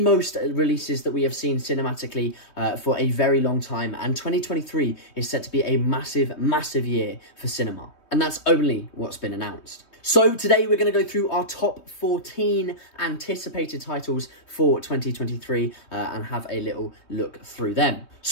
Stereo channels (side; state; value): right; late; 3.2 ms